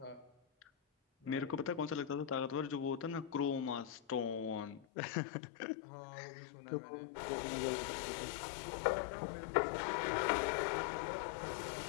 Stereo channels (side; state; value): right; drops out; at 4.9 s